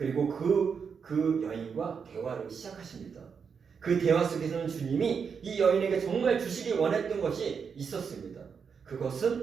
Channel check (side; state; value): left; quieter; 6.2 dB